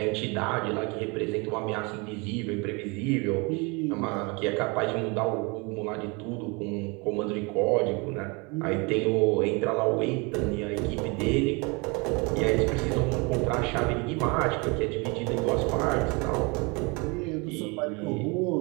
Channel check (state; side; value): quieter; left; 28.9 dB